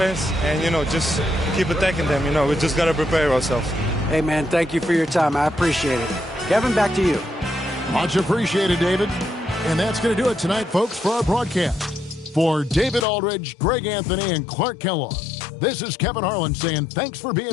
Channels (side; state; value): right; drops out; at 13.1 s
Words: and, just keep attacking them. We just got to prepare ourselves. Hey, man, thank you for your time. I appreciate it. Kevin, back to you. Much appreciated, David. And that's going to do it tonight, folks, for our broadcast. For David Aldridge, Greg Anthony, and Clark Kellogg, this is Kevin Harlan saying thanks for